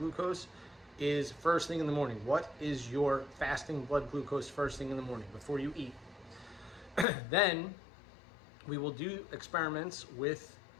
is first thing in the morning. What is your fasting blood glucose first thing in the morning before you eat? Then we will do experiments with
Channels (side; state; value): right; drops out; at 7.1 s